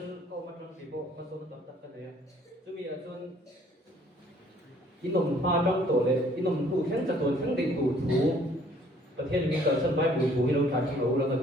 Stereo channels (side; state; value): both; normal; correlation 0.59